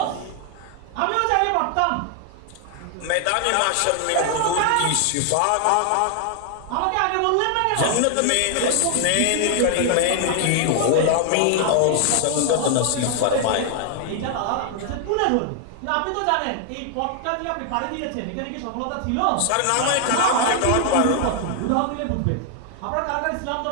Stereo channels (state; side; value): different; both; correlation 0.00